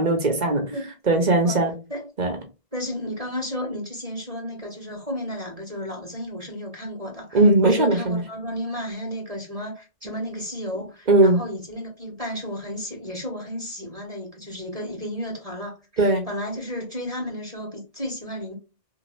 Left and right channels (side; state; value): left; late; 2.1 ms